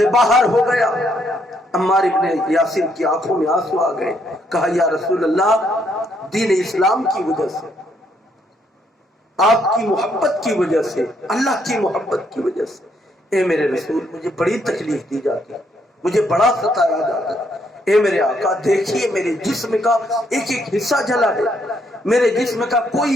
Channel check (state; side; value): normal; both; correlation 0.72